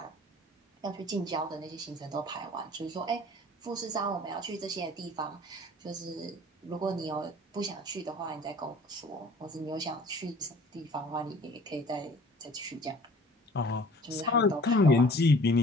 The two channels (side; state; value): both; normal; correlation 0.49